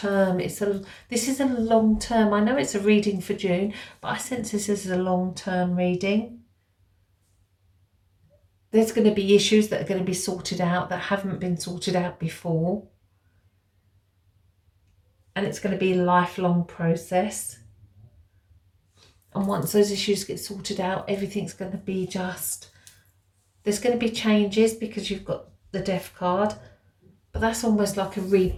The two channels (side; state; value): both; identical; correlation 1.00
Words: This is a long term. I know it's a reading for June, but I sense this is a long term reading. There's going to be issues that are going to be sorted out that haven't been sorted out before. And it's going to be a lifelong process. And once those issues get sorted out, everything's going to be just... There's going to be changes because you've got the Death card. But that's almost like a